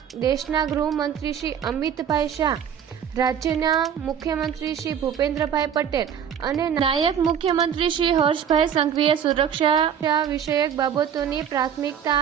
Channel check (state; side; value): quieter; left; 8.5 dB